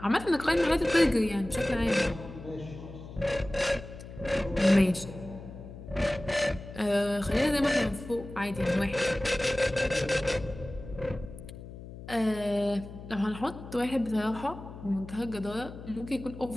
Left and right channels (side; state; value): left; noise; hum, 13 dB below the sound